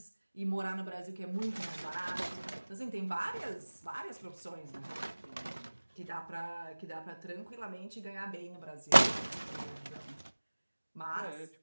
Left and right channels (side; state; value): both; inverted; correlation -1.00